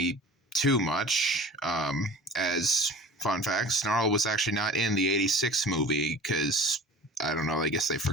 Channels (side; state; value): both; normal; correlation 0.41